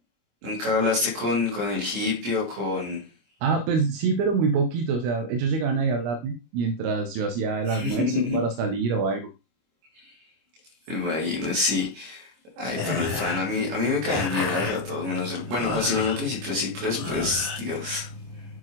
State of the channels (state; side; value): late; left; 25 ms